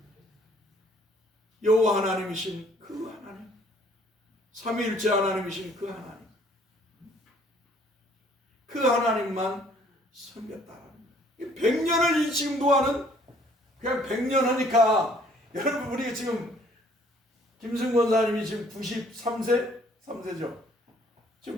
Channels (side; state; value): both; normal; correlation 0.59